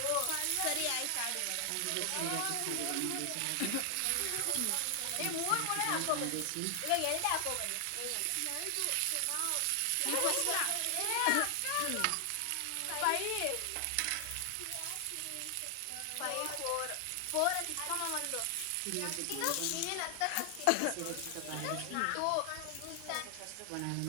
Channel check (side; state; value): both; different; correlation 0.00